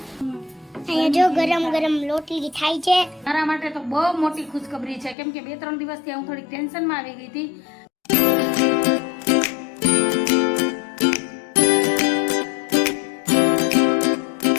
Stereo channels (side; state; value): right; drops out; at 5.2 s